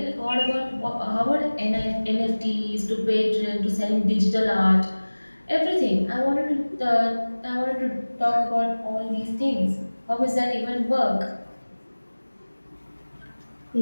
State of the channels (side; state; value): both; inverted; correlation -1.00